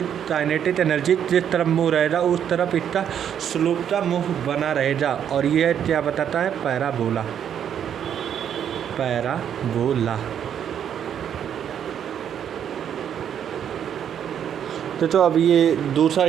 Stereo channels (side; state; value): left; quieter; 9.0 dB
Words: काइनेटिक एनर्जी जिस तरफ मूव रहेगा उस तरफ इसका स्लोप का मूव बना रहेगा। और ये क्या बताता है, पैराबोला। तो अब ये दूसरा